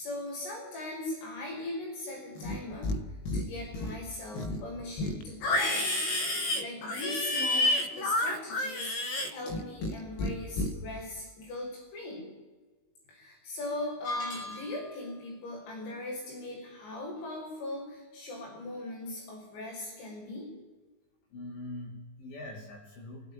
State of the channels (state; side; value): late; right; 19 ms